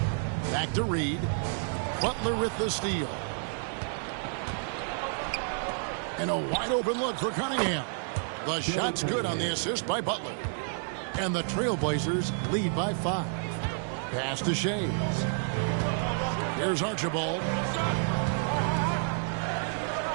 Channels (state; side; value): silent; left; 58 dB below the other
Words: Back to Reed. Butler with the steal. And a wide open look for Cunningham. The shot's good on the assist by Butler. And the Trailblazers lead by 5. Pass to Shades. Here's Archibald.